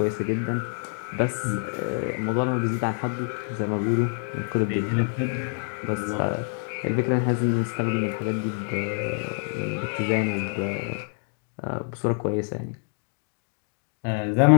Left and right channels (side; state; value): right; silent; 56 dB below the other